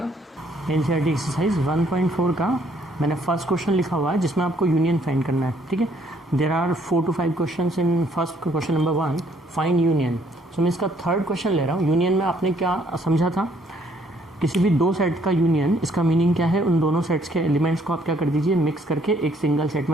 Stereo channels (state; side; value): normal; both; correlation 0.66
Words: एनसीईआरटी एक्सरसाइज 1.4 का मैंने फर्स्ट क्वेश्चन लिखा हुआ है जिसमें आपको यूनियन फाइंड करना है. ठीक है, there are 4 to 5 question in first question number 1 find union. So मैं इसका थर्ड क्वेश्चन ले रहा हूँ. यूनियन में आपने क्या समझा था, किसी भी दो सेट का यूनियन, इसका मीनिंग क्या है, उन दोनों सेट्स के एलिमेंट्स को आप क्या कर दीजिए, मिक्स करके एक सिंगल सेट